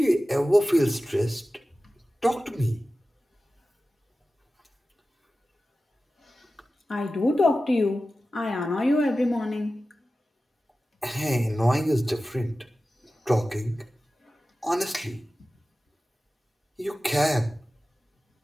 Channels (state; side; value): normal; both; correlation 0.95